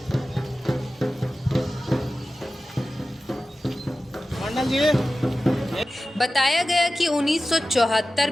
मंडल जी, बताया गया कि 1974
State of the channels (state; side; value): normal; both; correlation 0.94